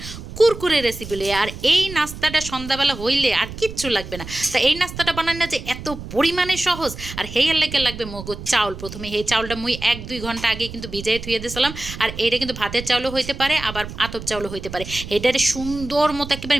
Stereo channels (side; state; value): right; noise; rumble, 11 dB below the sound